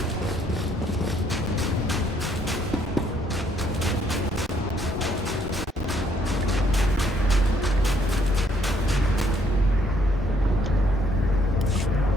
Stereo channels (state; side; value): normal; both; correlation 0.68